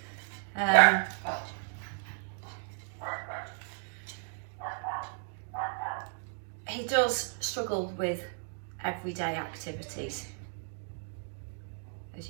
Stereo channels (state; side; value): silent; left; 55 dB below the other